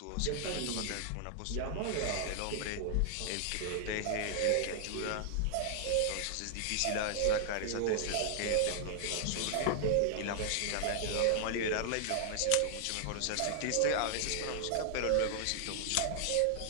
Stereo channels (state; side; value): different; both; correlation 0.00